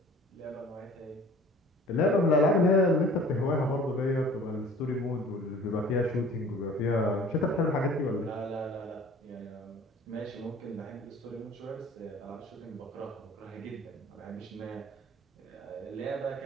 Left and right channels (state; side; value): normal; both; correlation 0.47